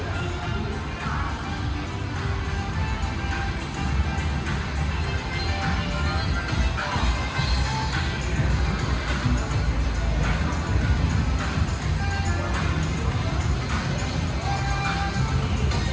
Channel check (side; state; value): both; identical; correlation 1.00